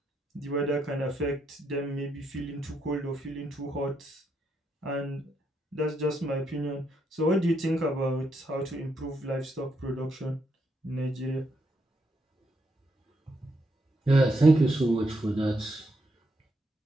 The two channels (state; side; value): normal; both; correlation 0.78